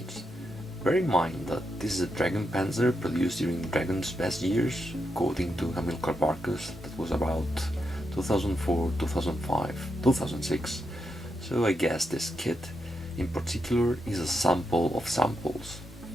Bear in mind that this is a Dragon Panzer produced during Dragon's best years, according to Hamilcar Barkus, that was about 2004, 2005, 2006. So I guess this kit in particular is a sample of samples.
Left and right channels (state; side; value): normal; both; correlation 0.84